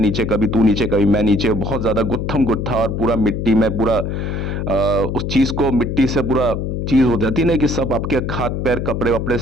कभी तू नीचे कभी मैं नीचे, बहुत ज्यादा गुत्थम गुत्था और पूरा मिट्टी में पूरा उस चीज को मिट्टी से पूरा चीज हो जाती है ना कि सब आपके हाथ पैर कपड़े वपड़े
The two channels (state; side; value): noise; left; hum, 2 dB below the sound